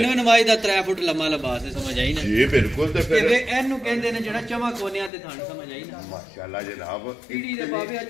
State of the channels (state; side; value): drops out; right; at 5.1 s